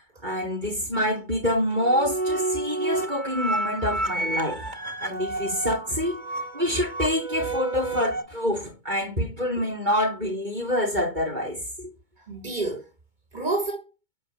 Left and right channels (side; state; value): left; late; 2.2 ms